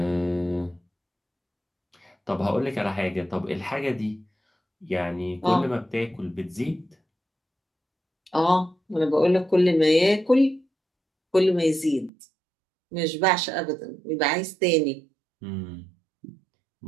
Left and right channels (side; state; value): left; drops out; at 12.1 s